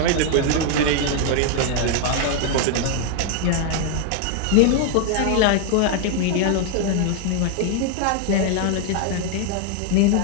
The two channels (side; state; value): both; different; correlation 0.00